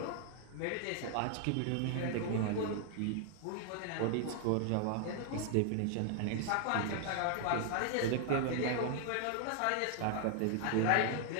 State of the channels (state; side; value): different; both; correlation 0.00